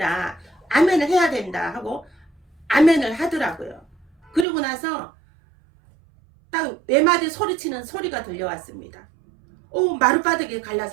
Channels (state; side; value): drops out; left; at 4.5 s